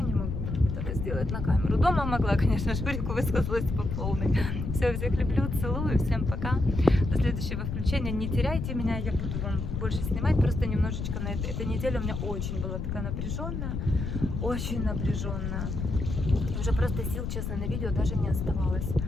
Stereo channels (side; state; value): left; noise; rumble, 3 dB below the sound